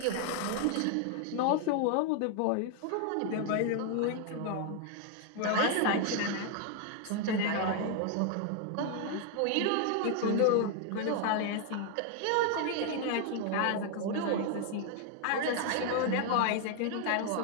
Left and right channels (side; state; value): both; different; correlation 0.00